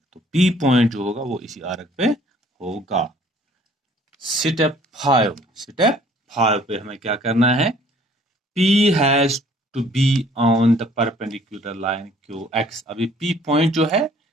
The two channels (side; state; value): both; normal; correlation 0.57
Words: तो P पॉइंट जो होगा वो इसी आर्क पे होगा। स्टेप 5 पे हमें क्या करना है, P has to be on the perpendicular line QX। अभी P पॉइंट जो है